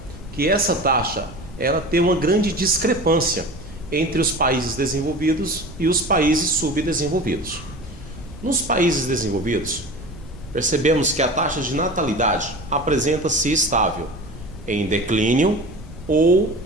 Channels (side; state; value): right; noise; rumble, 17 dB below the sound